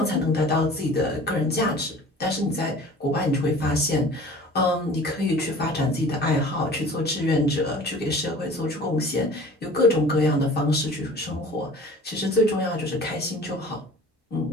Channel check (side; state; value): both; normal; correlation 0.45